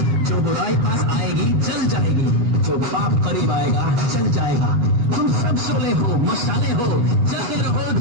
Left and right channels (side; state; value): left; late; 8.3 ms